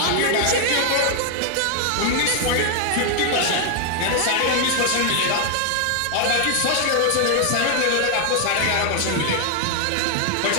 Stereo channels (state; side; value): different; both; correlation 0.00